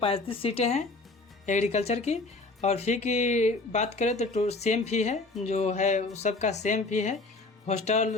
सीटें हैं एग्रीकल्चर की। और फ़ी की बात करें तो सेम फ़ी है, जो है सबका सेम फ़ी है,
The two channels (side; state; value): right; quieter; 3.3 dB